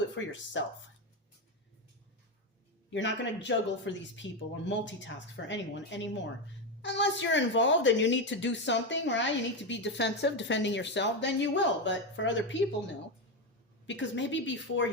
for yourself. You're not going to juggle for these people or multitask for anyone anymore. Unless you're involved and you need to do something, right? You need to be defensive, defending yourself, then you will. But for other people, no. Because maybe before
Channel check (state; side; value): normal; both; correlation 0.11